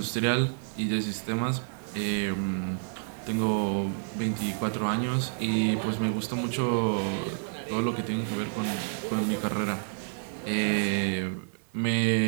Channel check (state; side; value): silent; left; digital silence